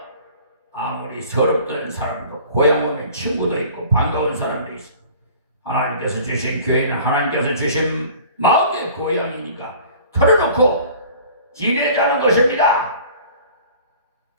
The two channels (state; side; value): inverted; both; correlation -0.46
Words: 아무리 서럽던 사람도 고향 오면 친구도 있고 반가운 사람도 있어. 하나님께서 주신 교회는 하나님께서 주신 마음의 고향이니까 털어놓고 지내자는 것입니다.